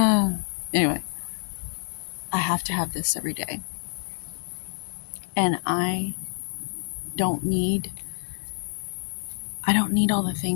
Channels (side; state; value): right; silent; 57 dB below the other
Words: Anyway, I have to have this every day, and don't need I don't need all the